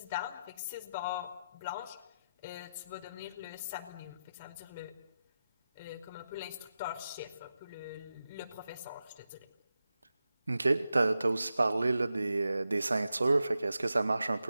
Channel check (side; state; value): both; inverted; correlation -0.90